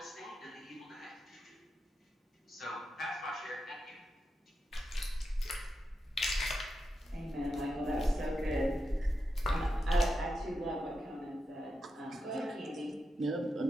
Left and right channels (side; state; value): both; normal; correlation 0.87